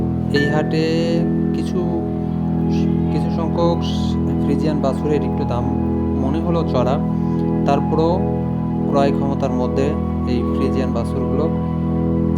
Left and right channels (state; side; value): identical; both; correlation 1.00